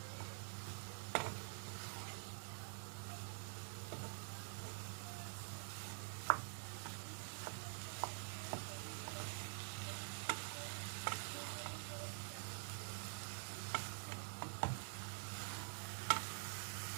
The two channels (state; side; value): silent; left; digital silence